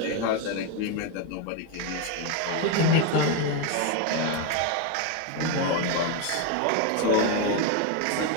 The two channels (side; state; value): both; different; correlation 0.02